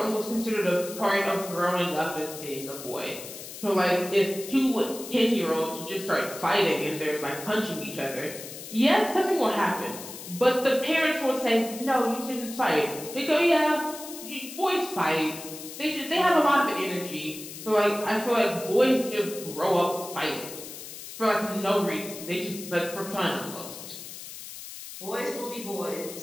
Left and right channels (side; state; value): left; noise; hiss, 12 dB below the sound